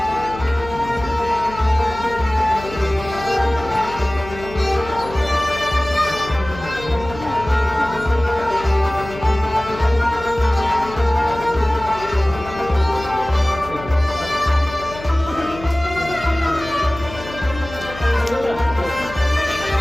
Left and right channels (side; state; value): left; noise; hum, 13 dB below the sound